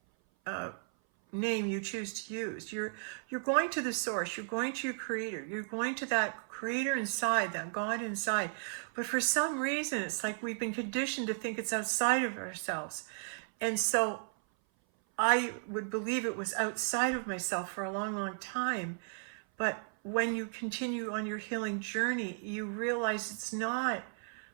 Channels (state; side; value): silent; left; 55 dB below the other